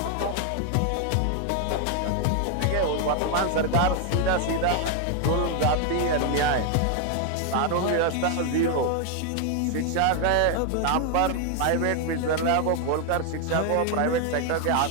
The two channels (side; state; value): both; different; correlation 0.01